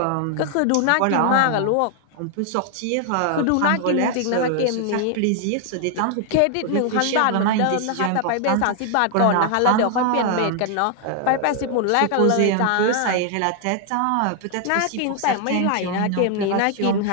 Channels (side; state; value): both; different; correlation 0.00